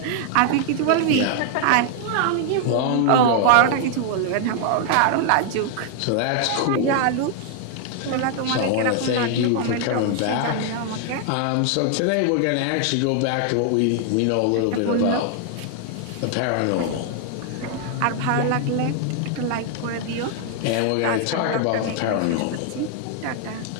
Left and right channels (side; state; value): both; different; correlation 0.00